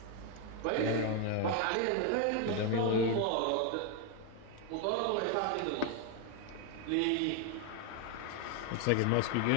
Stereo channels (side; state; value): both; different; correlation 0.01